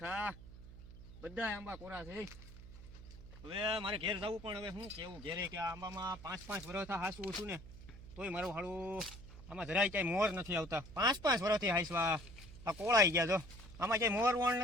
બધા આંબા કોરા છે. હવે મારે ઘેર જવું, પણ હવે શું કેવું ઘેરે કે આ આંબામાં 5-5 વર્ષ હાસવું છું ને તોય મારું હાડું આમાં જરાય ક્યાંય મોર નથી આવતા. 5-5 વર્ષથી હાઈસવા આ કોળાઈ ગયા. જો આમાં ક્યાંય મોર વણ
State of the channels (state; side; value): noise; right; hum, 16 dB below the sound